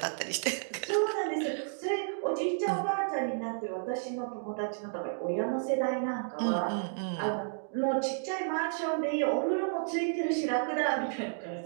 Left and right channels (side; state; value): left; silent; digital silence